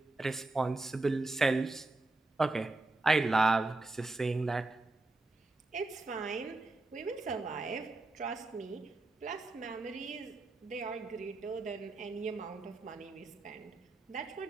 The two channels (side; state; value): left; quieter; 3.1 dB